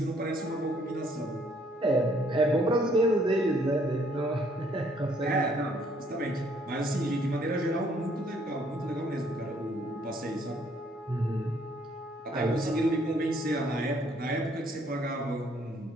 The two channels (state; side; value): normal; both; correlation 0.65